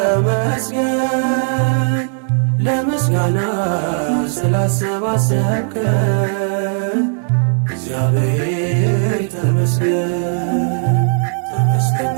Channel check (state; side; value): silent; left; digital silence